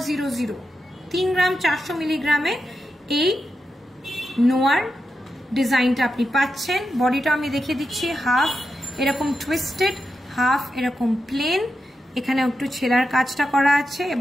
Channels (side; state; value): both; normal; correlation 0.88